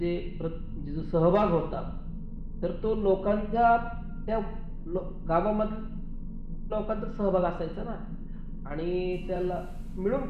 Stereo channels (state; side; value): identical; both; correlation 1.00